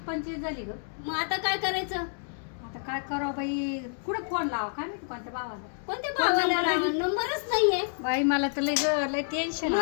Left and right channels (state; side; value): silent; right; digital silence